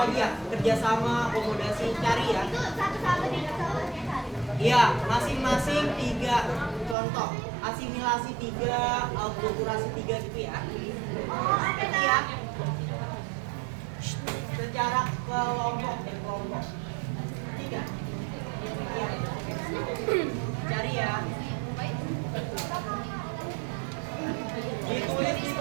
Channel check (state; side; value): drops out; left; at 7.0 s